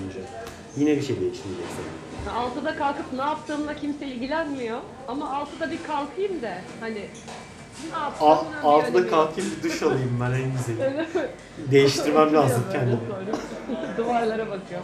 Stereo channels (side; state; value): both; identical; correlation 1.00